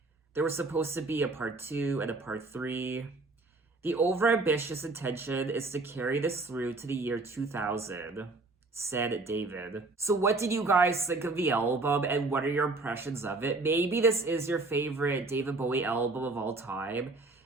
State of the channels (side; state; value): left; quieter; 3.3 dB